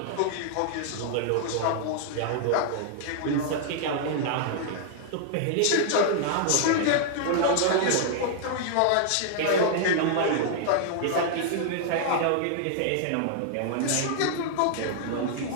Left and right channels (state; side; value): different; both; correlation -0.01